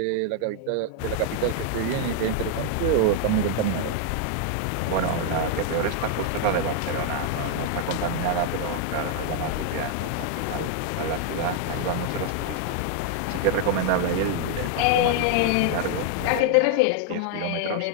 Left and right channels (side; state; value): both; different; correlation 0.00